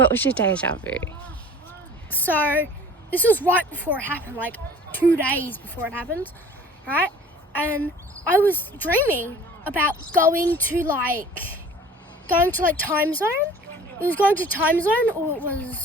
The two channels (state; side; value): normal; both; correlation 0.46